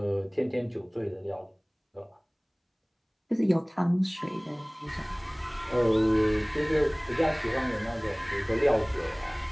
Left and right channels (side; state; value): both; identical; correlation 1.00